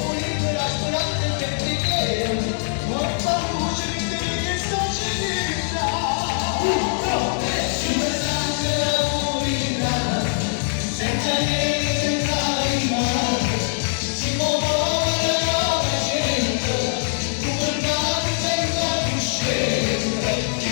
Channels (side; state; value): right; silent; 64 dB below the other